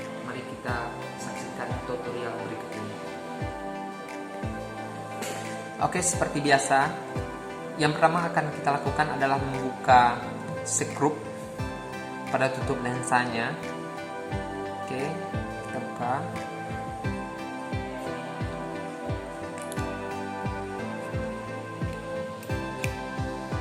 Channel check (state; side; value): identical; both; correlation 1.00